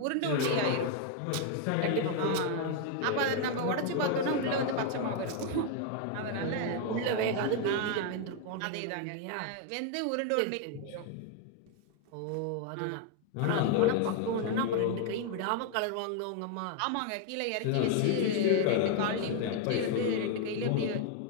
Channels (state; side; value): different; both; correlation 0.00